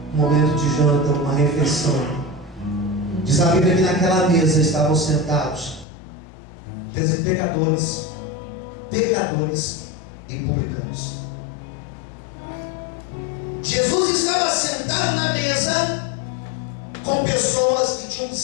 um momento de janta, uma refeição, diz a Bíblia que naquela mesa estavam sentados pecadores e publicanos. Jesus estava sentado na mesa com pessoas que tinham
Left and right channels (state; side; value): drops out; right; at 5.9 s